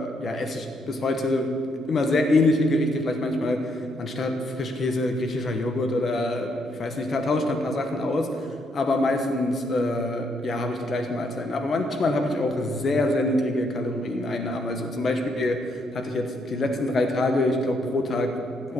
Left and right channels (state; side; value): normal; both; correlation 0.74